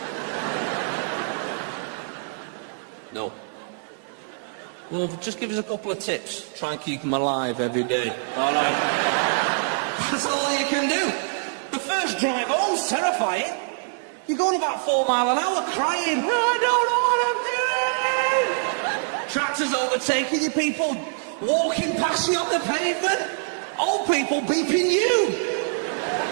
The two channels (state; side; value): silent; left; 61 dB below the other